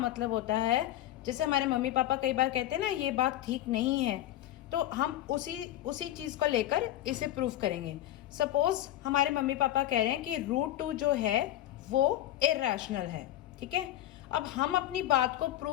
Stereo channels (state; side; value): quieter; right; 13.5 dB